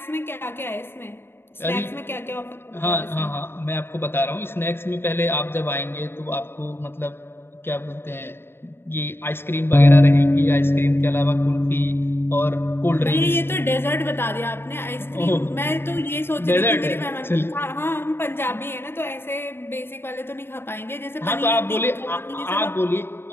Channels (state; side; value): late; right; 0.11 ms